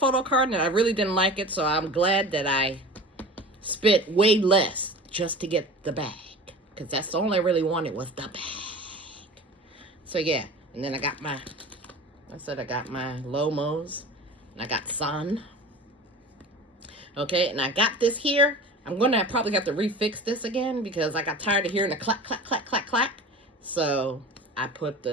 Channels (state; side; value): normal; both; correlation 0.36